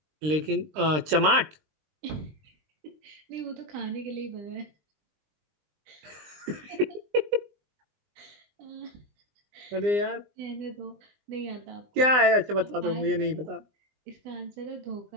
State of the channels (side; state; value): left; late; 20 ms